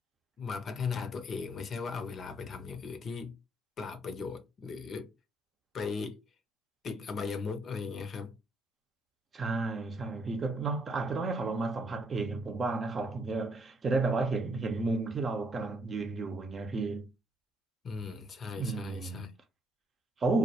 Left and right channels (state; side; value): normal; both; correlation 0.71